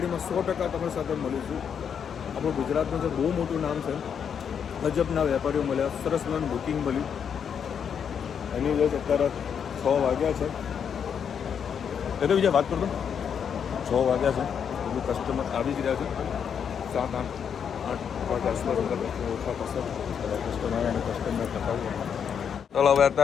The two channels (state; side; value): quieter; right; 7.5 dB